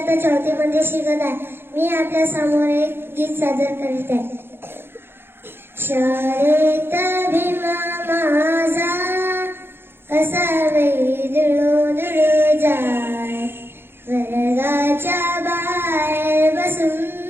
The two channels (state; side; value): late; left; 0.11 ms